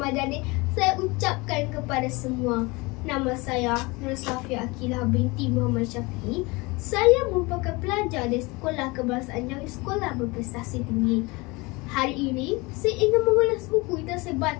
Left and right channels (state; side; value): quieter; right; 24.9 dB